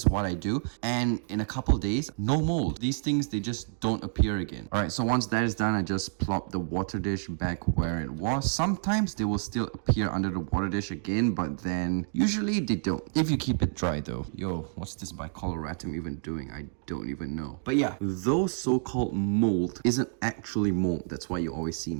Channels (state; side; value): silent; left; digital silence